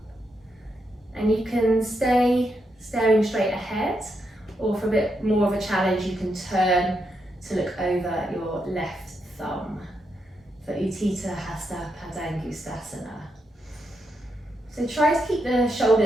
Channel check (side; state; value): both; normal; correlation 0.82